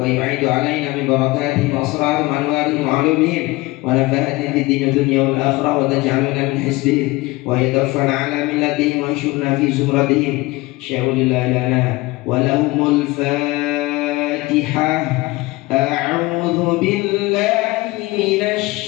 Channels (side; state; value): right; quieter; 21.3 dB